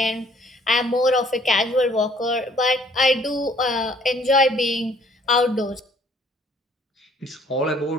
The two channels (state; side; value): normal; both; correlation 0.59